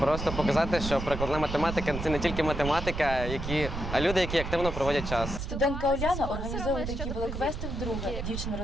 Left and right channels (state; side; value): noise; right; rumble, 6 dB below the sound